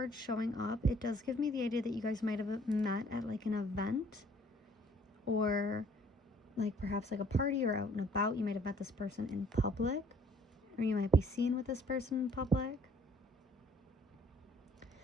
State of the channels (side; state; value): both; normal; correlation 0.59